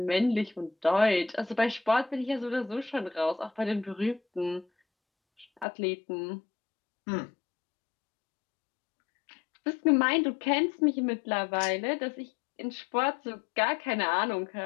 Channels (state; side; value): drops out; right; at 5.7 s